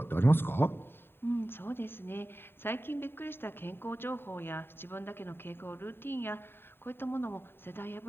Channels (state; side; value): late; right; 0.11 ms